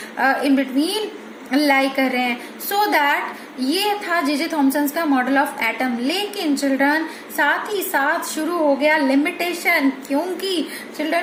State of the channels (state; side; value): identical; both; correlation 1.00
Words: इन बिटवीन लाई कर रहे हैं. सो दैट ये था जे थॉमसन का मॉडल ऑफ एटम. लेकिन चिल्ड्रन, साथ ही साथ शुरू हो गया लिमिटेशन, क्योंकि